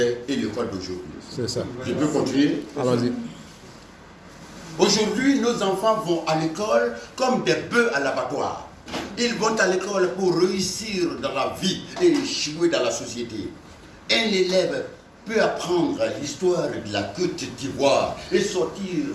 et l'école d'aujourd'hui. C'est ça. Je peux continuer? Allons-y. Aujourd'hui, nos enfants vont à l'école comme des bœufs à l'abattoir. Ils vont à l'école pour réussir dans la vie et échouer dans la société. Un élève peut apprendre l'histoire de la Côte d'Ivoire et sortir,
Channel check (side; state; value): both; identical; correlation 1.00